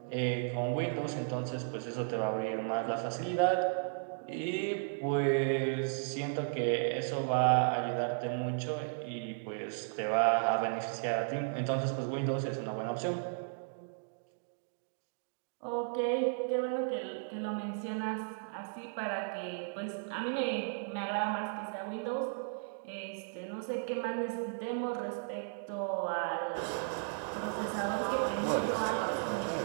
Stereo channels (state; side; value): silent; left; digital silence